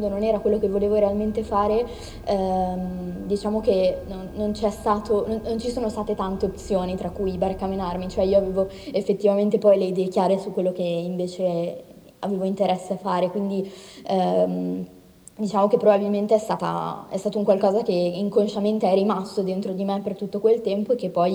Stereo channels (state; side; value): identical; both; correlation 1.00